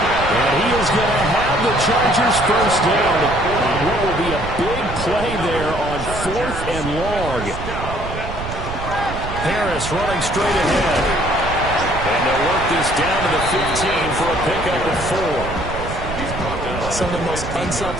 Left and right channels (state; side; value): noise; right; rumble, 8 dB below the sound